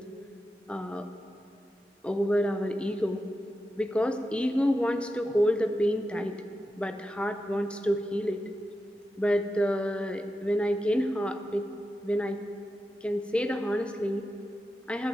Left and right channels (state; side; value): normal; both; correlation 0.89